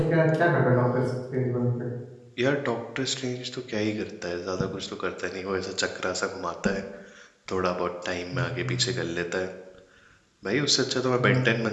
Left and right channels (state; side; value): identical; both; correlation 1.00